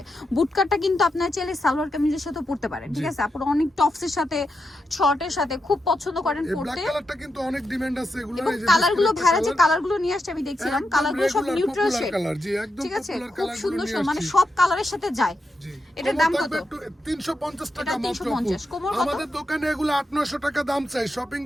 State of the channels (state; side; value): normal; both; correlation 0.86